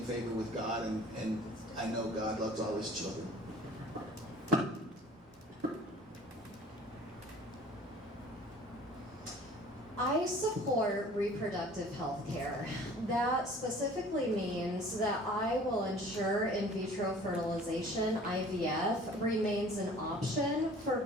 favor with God, and I know God loves all his children. I support reproductive health care. That specifically means that I will ensure in vitro fertilization, IVF, remains an option for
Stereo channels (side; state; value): both; normal; correlation 0.49